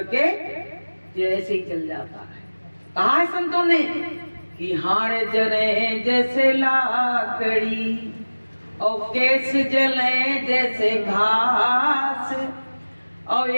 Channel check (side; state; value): both; inverted; correlation -1.00